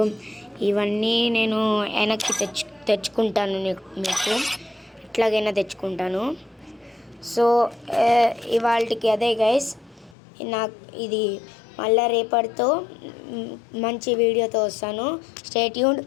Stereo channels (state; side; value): drops out; right; at 10.2 s